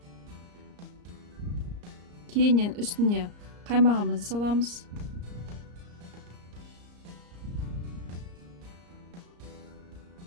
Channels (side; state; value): left; late; 34 ms